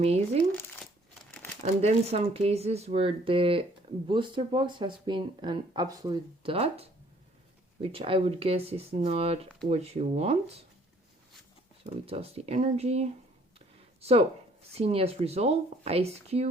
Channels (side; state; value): both; normal; correlation 0.60